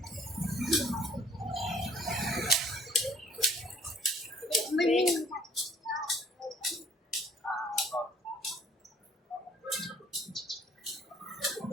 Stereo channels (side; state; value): both; normal; correlation 0.56